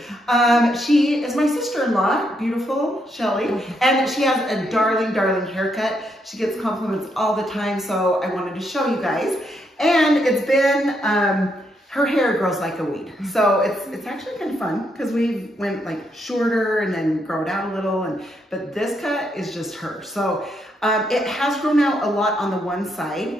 She is my sister-in-law, beautiful Shelly, and she has a darling, darling haircut. She gets compliments all the time, so I wanted to show you guys. And it's been, her hair grows like a weed. So it's actually kind of fun because we went like shorter and then grow it out a little, but this cut is just her. So it has grown out a lot on the one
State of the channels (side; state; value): both; normal; correlation 0.77